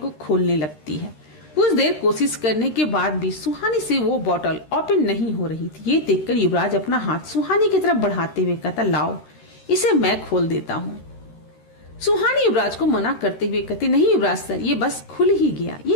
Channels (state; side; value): late; right; 13 ms